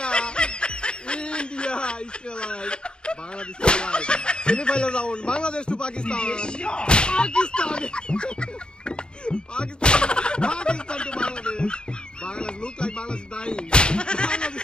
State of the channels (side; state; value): right; late; 0.051 ms